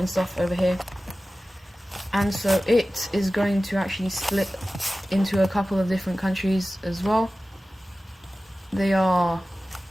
stuff over here. And so it is going to actually split into a couple of different countries as well. They are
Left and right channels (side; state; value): both; normal; correlation 0.96